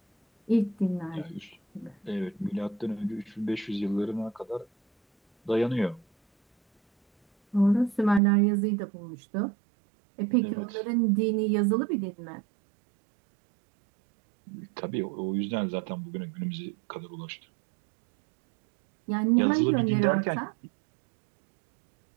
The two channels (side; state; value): left; drops out; at 8.2 s